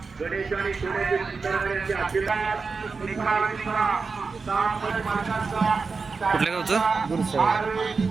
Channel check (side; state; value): left; quieter; 4.6 dB